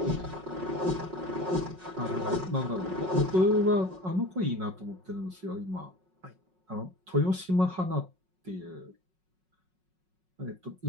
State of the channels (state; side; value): late; left; 5.4 ms